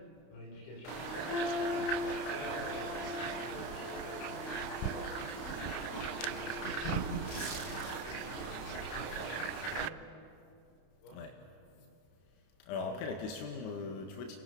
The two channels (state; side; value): late; right; 32 ms